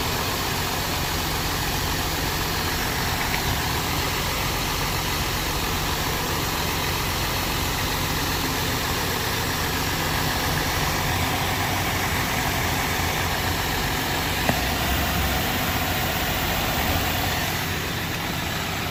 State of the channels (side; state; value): both; identical; correlation 1.00